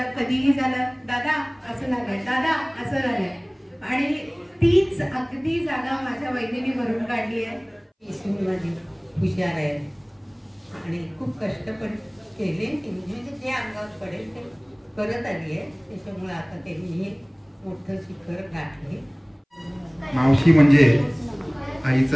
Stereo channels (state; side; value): identical; both; correlation 1.00